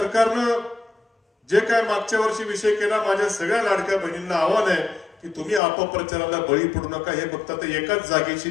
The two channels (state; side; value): drops out; right; at 5.6 s